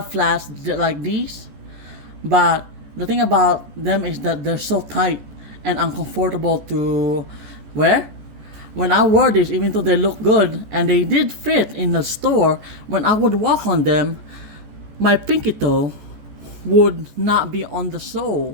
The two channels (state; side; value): late; left; 14 ms